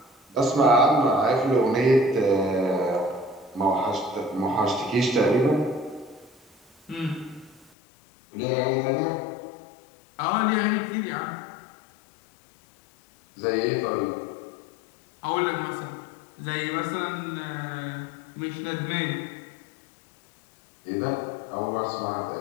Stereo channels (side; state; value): right; drops out; at 7.7 s